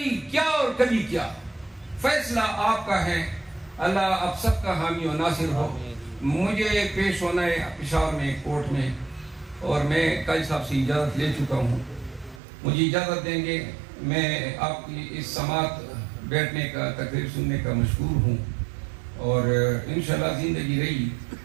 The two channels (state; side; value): drops out; left; at 12.4 s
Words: کیا اور کبھی کیا. فیصلہ آپ کا ہے, اللہ آپ سب کا حامی و ناصر ہو. مجھے پیش ہونا ہے پشاور میں کورٹ میں, اور میں قاضی صاحب سے اجازت لے چکا ہوں. مجھے اجازت دیں گے, میں آپ کی اس سماعت بیٹھنے کا, تقریر سننے کا مشکور ہوں, اور انشاءاللہ زندگی رہی